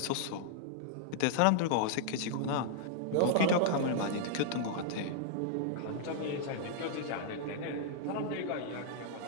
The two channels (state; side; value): different; both; correlation -0.01